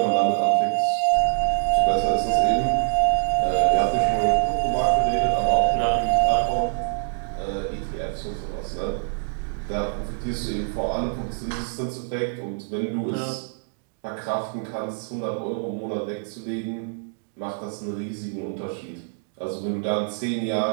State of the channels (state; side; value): silent; left; digital silence